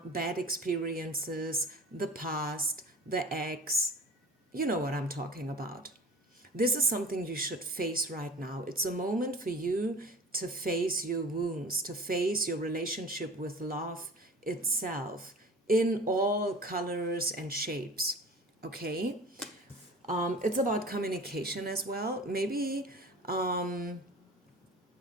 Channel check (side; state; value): both; normal; correlation 0.40